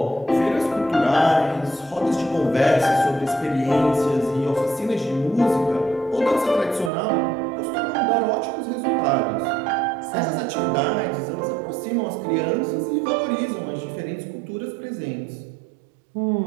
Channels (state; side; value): drops out; left; at 6.9 s